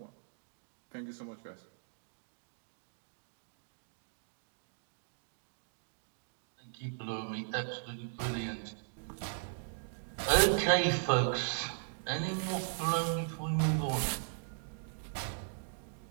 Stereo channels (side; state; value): left; silent; digital silence